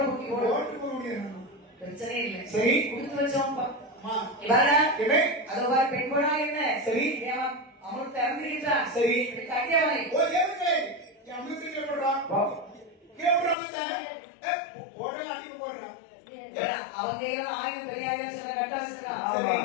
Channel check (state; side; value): drops out; right; at 13.6 s